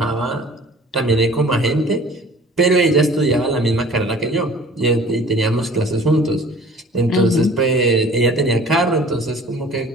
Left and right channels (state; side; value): normal; both; correlation 0.48